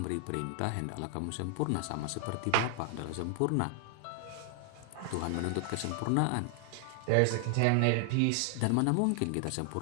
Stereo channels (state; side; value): different; both; correlation 0.00